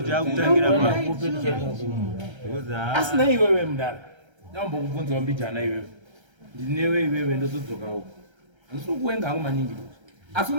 taakutangira asina iwewe mudara ndambokubvunzawo mbijana iwewe ndinewe iwewe ndozodzokawo ndisikuwenga hangu maningi asi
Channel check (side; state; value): left; late; 1.3 ms